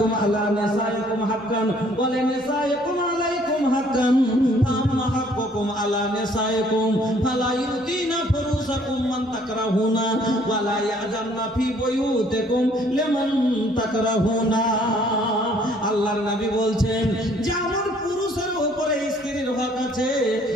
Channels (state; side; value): normal; both; correlation 0.61